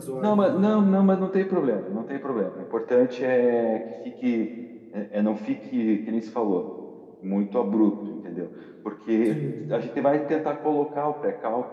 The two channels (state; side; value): identical; both; correlation 1.00